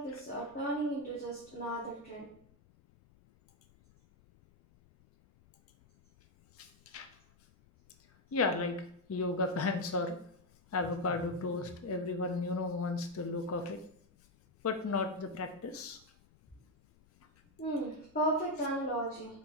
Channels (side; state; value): left; noise; rumble, 29 dB below the sound